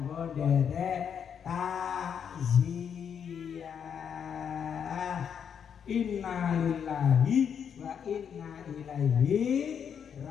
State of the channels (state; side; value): quieter; right; 7.7 dB